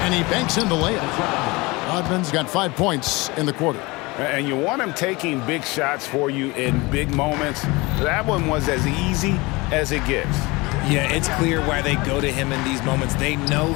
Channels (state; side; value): quieter; right; 23.9 dB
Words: and he banks in the layup. Rodman's got 5 points in the quarter. And you want him taking big shots for you in big moments. That one was as easy as it gets. Yeah, it's clear why they go to him in these moments. They know